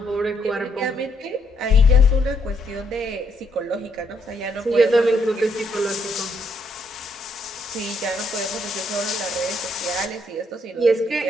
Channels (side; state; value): both; normal; correlation 0.73